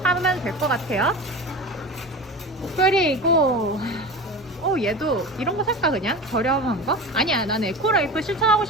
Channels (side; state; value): both; normal; correlation 0.30